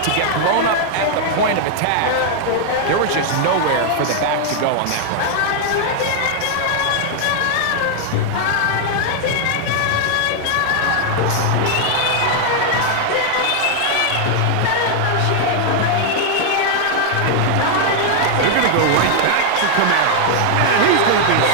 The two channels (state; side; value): different; both; correlation 0.00